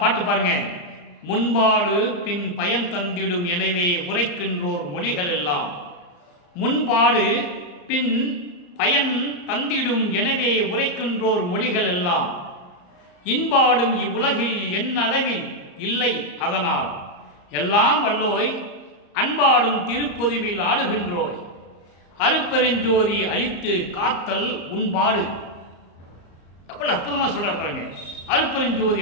பாட்டு பாருங்க. முன்பாடு பின் பயன் தந்திடும் எனவே உரைக்கின்றோர் மொழிகள் எல்லாம். முன்பாடு பின் பயன் தந்திடும் எனவே உரைக்கின்றோர் மொழிகள் எல்லாம். இன்பாடும் இவ்வுலகில் என் அளவில் இல்லை அதனால் எல்லாம் வல்லோய் அன்பாடும் திருப்பொதுவில் ஆடுகின்றோய். அருப்பெருஞ்சோதி அழித்து காத்தல் உன்பாடு. எவ்வளவு அற்புதமா சொல்ற பாருங்க. அருப்பெருஞ்சோதி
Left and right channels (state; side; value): late; right; 34 ms